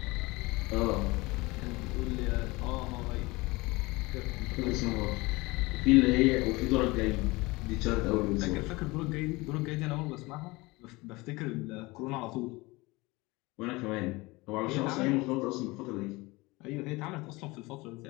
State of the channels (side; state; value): right; quieter; 23.0 dB